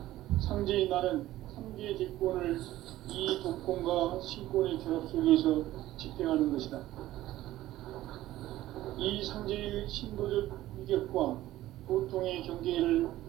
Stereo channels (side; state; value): left; quieter; 15.1 dB